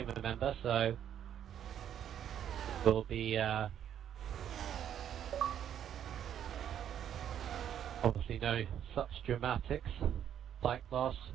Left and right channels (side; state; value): left; quieter; 9.8 dB